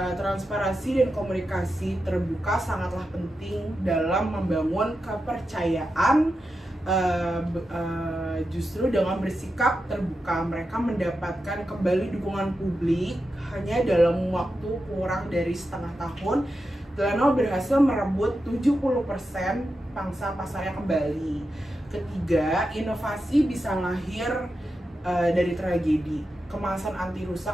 transparansi dan komunikasi terbuka sangatlah penting dalam membangun kepercayaan. Justru dengan bersikap terbuka, mereka mendapatkan kembali dukungan publik. Hanya dalam waktu kurang dari setengah tahun, Tylenol berhasil merebut 70% pangsa pasarnya kembali. Ketiga, inovasi bisa lahir dari tragedi. Kemasan anti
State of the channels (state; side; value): normal; both; correlation 0.89